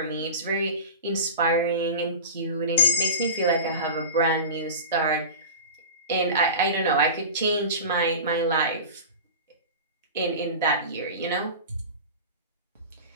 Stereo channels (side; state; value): both; inverted; correlation -0.31